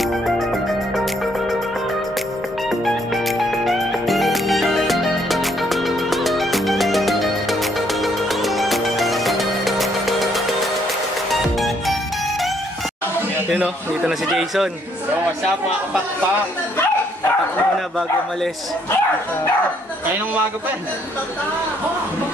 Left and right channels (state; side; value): normal; both; correlation 0.69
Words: Yun o, dito na si Jason. So, what's up mga kapakpak? Patak muna bago umalis. Kaya nung umaga pa eh.